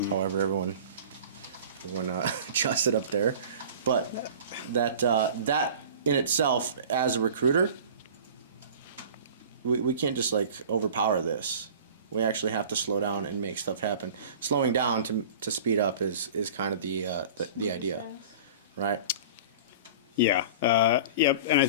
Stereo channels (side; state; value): both; inverted; correlation -0.41